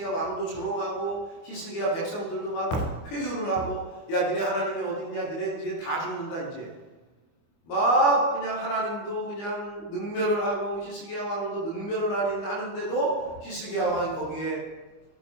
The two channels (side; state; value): right; late; 24 ms